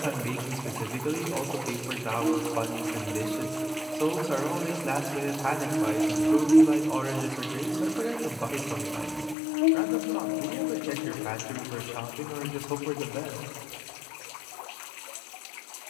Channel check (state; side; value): drops out; right; at 9.3 s